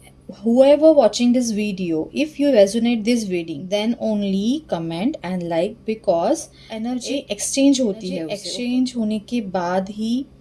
whoever watching this video, if you resonate this video, then only comment and like, because energy exchange होती है, एक्सचेंज होने के बाद ही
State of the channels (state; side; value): identical; both; correlation 1.00